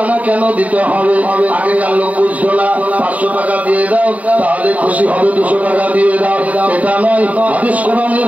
কেন দিতে হবে? আগেকার লোক বুঝতো না 500 টাকা দিয়ে দাও তাহলে খুশি হবে, 200 টাকা দিয়ে দাও, এটা নয়। হাদিস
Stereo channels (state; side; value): late; left; 0.070 ms